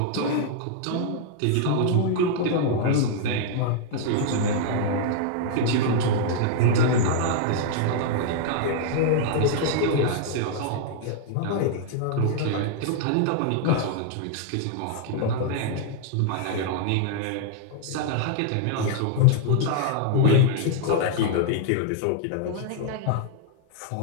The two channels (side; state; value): both; different; correlation -0.01